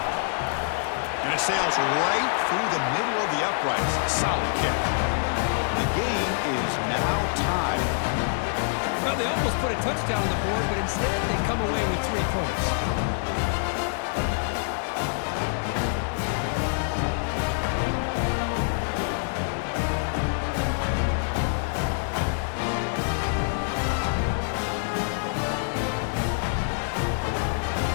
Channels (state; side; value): silent; right; digital silence